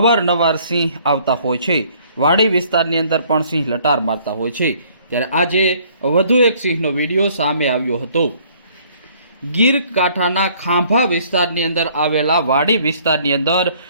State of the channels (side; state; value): both; inverted; correlation -0.59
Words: સિંહ આવતા હોય છે। વાડી વિસ્તારની અંદર પણ સિંહ લટાર મારતા હોય છે। ત્યારે આજે વધુ એક સિંહનો વિડીયો સામે આવ્યો હતો। ગીર કાંઠાના ખાંભા વિસ્તારની અંદર આવેલા વાડી વિસ્તારની અંદર